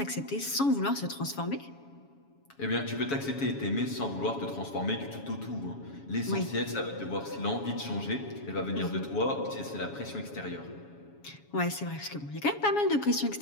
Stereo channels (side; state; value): right; late; 7.2 ms